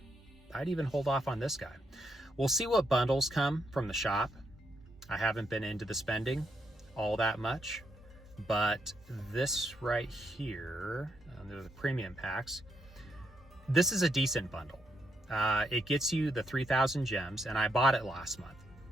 I'd even hold off on this guy. We'll see what bundles come from the shop. I haven't been into the spending all that much, but this right here, the premium packs, this is a decent bundle. It gets you the 3,000 gems, and I bought it last month,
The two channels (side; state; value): both; normal; correlation 0.79